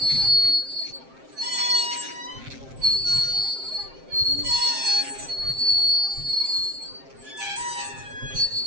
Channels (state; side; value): late; left; 7.6 ms